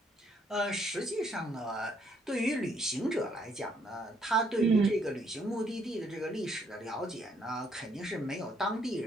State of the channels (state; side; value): normal; both; correlation 0.69